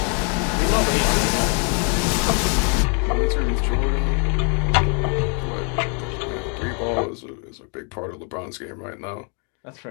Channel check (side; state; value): right; quieter; 37.9 dB